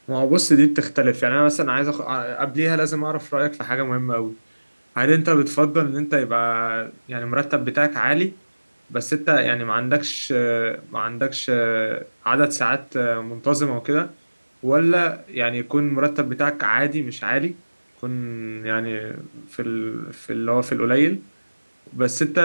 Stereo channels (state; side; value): inverted; both; correlation -1.00